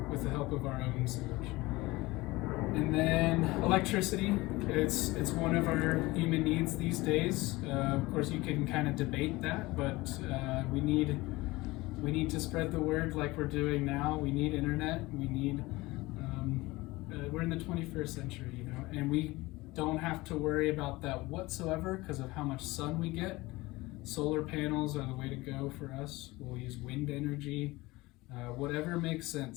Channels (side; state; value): right; quieter; 20.8 dB